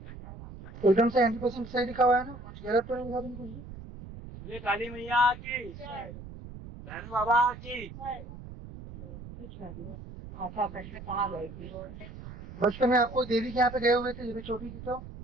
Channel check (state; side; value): noise; right; rumble, 13 dB below the sound